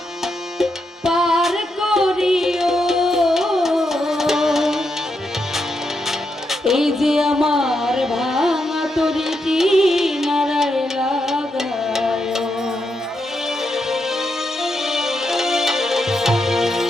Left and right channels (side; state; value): both; normal; correlation 0.83